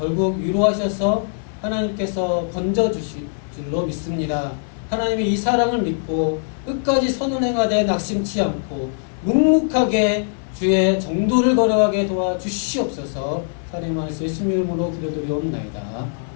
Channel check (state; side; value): silent; right; 58 dB below the other